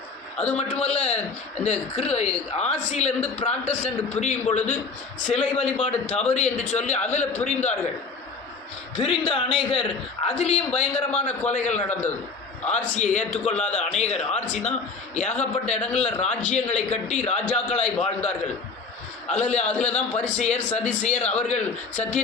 அது மட்டுமல்ல, இந்த ஆசியிலிருந்து பிராட்டஸ்டன்ட் பிரியும் பொழுது சிலை வழிபாடு தவறு என்று சொல்லி அதில் பிரிந்தார்கள். பிரிந்த அநேகர் அதிலையும் பயங்கரமான கொலைகள் நடந்தது. ஆர்சியை ஏற்றுக்கொள்ளாத அநேகர், ஆர்சி தான் ஏகப்பட்ட இடங்களில் ராஜ்யங்களை கட்டி ராஜாக்களாய் வாழ்ந்தார்கள். அதில் தான் பரிசேயர், சதிசேயர், அவர்கள்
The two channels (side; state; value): right; quieter; 4.5 dB